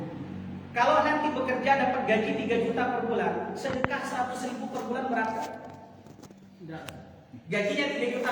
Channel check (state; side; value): identical; both; correlation 1.00